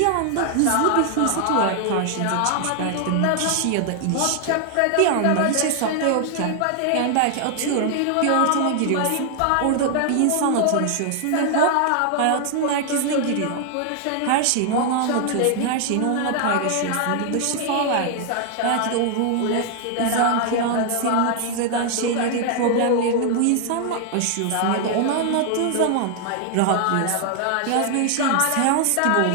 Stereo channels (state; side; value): different; both; correlation 0.00